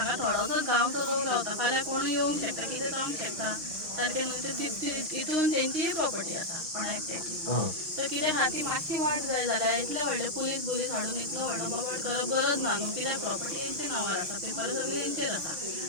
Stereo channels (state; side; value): late; left; 6.5 ms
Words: थोडोसोच गांवचो लोक रावता फाल्यां कोण येवंक शकता कितें जावंक शकता सारकें न्हू हितून तेंची प्रॉपर्टी आसा कोणा एकट्याची तर कितें आहा ती मातशी वाट जाय जाल्यार इतले व्हडले पुलीस हाडून इतलो व्हडलो बोबाड करप गरज ना न्हू कित्याक प्रॉपर्टी हेंचे नांवार आसा पेपर सगळे हेंचेर आसा